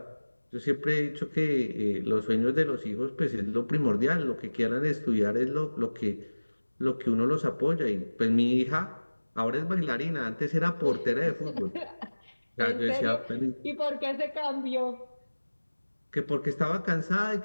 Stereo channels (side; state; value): both; inverted; correlation -1.00